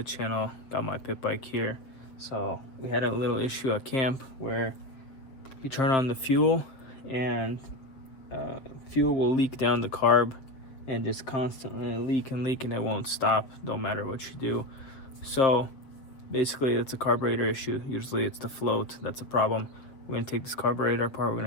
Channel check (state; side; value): late; right; 7.3 ms